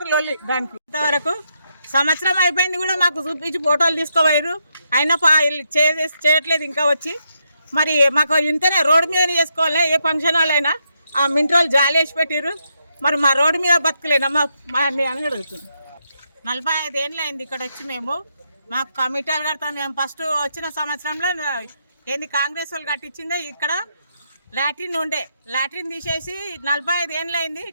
లొల్లి. దానికి ఇంతవరకు సంవత్సరం అయిపోయింది కూడా మాకు చూపించి ఫోటోలు తీసుకోవారు. అయినా చేయట్లేదు ఇంకా వచ్చి. మరి మాకు ఇంతనే రోడ్డు మీద చేసుకోవాలి. ఏ ఫంక్షన్ వాళ్ళైనా ఆ మింట్రోలు జాలి వేసి పెట్టారు. మరి మా రోడ్డు మీద బతకలేనా మా అని అడుగుతుంది. 45 ఏళ్ళు అయింది ఇక్కడ వచ్చి. మాకు కమిటీలు కడతాం. మేము ఫస్ట్ వచ్చిన సంవత్సరంలో ఏంది కాంగ్రెస్ వాళ్ళు కట్టించిందే. ఇక్కడ లాట్రిన్ ఉండే, లాట్రిన్ తీసేసి 45 ఏళ్ళు అయింది.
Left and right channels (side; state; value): both; inverted; correlation -0.80